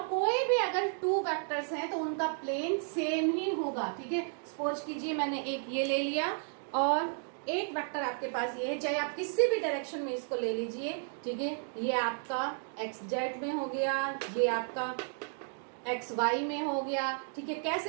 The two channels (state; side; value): silent; left; 56 dB below the other